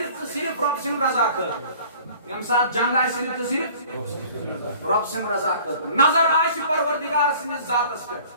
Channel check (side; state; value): both; inverted; correlation -0.49